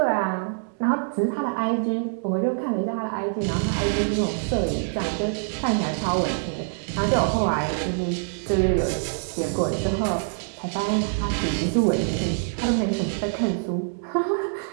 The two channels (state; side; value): silent; left; digital silence